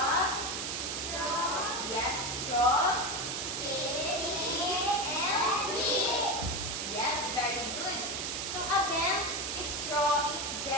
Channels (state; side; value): noise; right; hiss, 3 dB below the sound